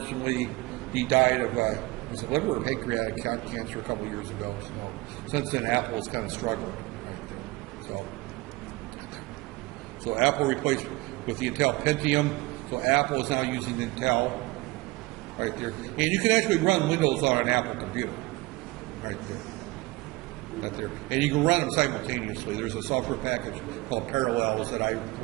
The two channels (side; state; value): left; quieter; 22.0 dB